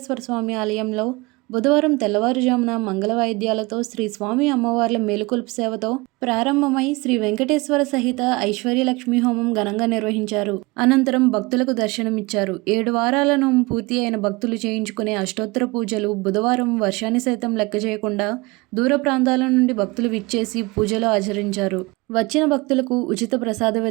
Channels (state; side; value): quieter; left; 24.4 dB